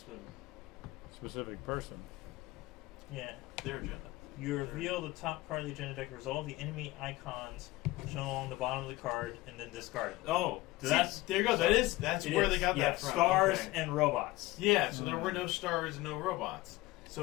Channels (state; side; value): quieter; right; 19.2 dB